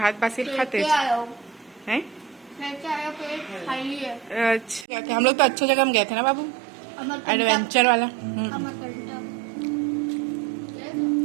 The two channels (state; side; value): drops out; left; at 4.9 s